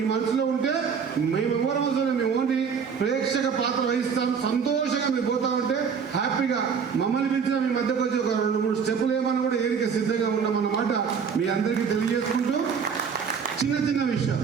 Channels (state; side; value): quieter; left; 6.4 dB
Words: మనసులో ఉంటే మేమెవరి మనసులో మేము ఓన్లీ ప్రేక్షక పాత్ర వహిస్తాం. సంతోషంగా మీరు పోతా ఉంటే హ్యాపీగా మమ్మల్ని పిలిచిన మీ మధ్యకు వచ్చి ఒక 2-3 స్టెప్పులు ఏమని కూడా ఏరిక సిద్ధంగా ఉన్నామన్నమాట మీ అందరికీ తెలియజేసుకుంటూ, చిన్న